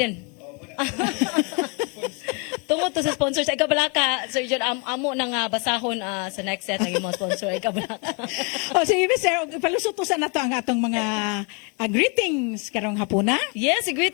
Tungod to sa sponsor sa Ikabalaka, Sir John, amo nang basahon sa next set ng mga sponsor sa Ikabalaka. Sige, Sir, palusot sa nato ang atong mga greetings karong hapuna. Yes,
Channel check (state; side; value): quieter; right; 33.2 dB